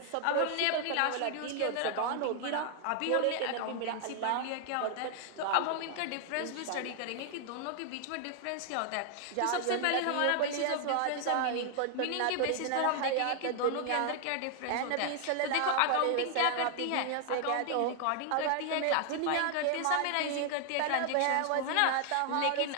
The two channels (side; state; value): both; different; correlation 0.00